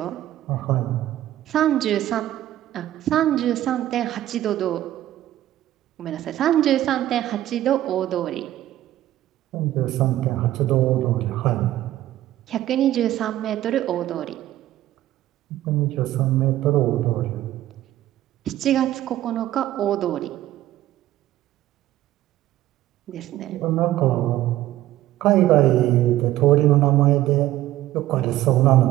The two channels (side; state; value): left; quieter; 14.2 dB